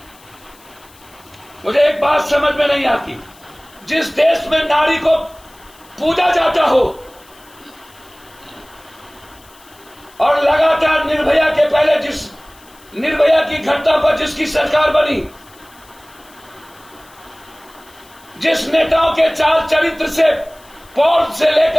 मुझे एक बात समझ में नहीं आती, जिस देश में नारी को पूजा जाता हो और लगातार निर्भया के पहले जिस निर्भया की घटना पर जिसकी सरकार बनी, जिस नेताओं के चाल चरित्र से पॉल से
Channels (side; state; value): left; noise; hiss, 26 dB below the sound